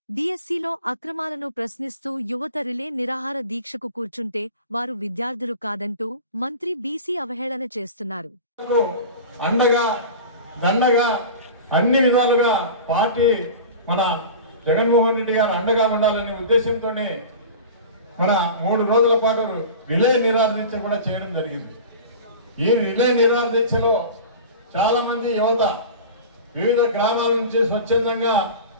డీఎస్సీలో అక్రమాలను ప్రశ్నిస్తూ యువత రిలే నిరాహార దీక్షకు కూర్చుంటే వారు విద్యార్థులు కాదంటూ మంత్రి బీసీ అవహేళన చేస్తున్నారు. అన్ని విధాలుగా పార్టీ మన జగన్మోహన్ రెడ్డి గారు అండగా ఉండాలనే ఉద్దేశంతోనే మన 3 రోజుల పాటు రిలే నిరాహార దీక్ష కూడా చేయడం జరిగింది. ఈ రిలే నిరాహార దీక్షలో చాలా మంది యువత వివిధ గ్రామాల నుంచి స్వచ్ఛందంగా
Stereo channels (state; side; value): inverted; both; correlation -0.35